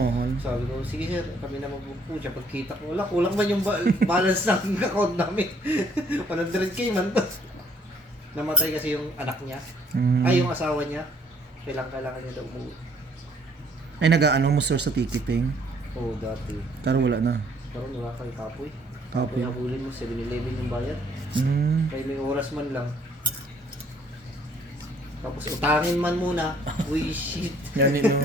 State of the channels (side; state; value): both; normal; correlation 0.63